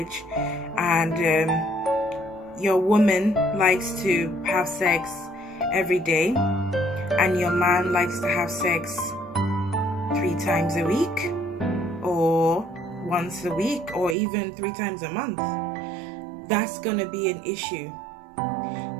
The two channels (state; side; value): drops out; left; at 14.2 s